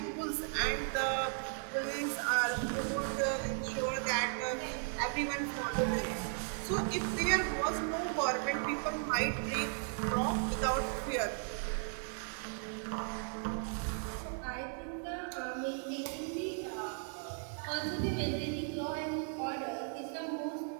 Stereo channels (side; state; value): left; silent; 54 dB below the other